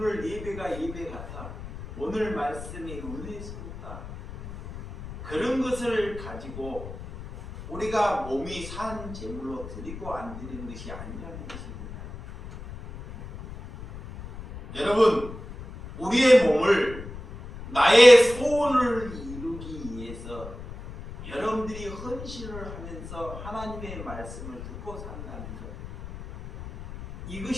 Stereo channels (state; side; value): noise; left; rumble, 12 dB below the sound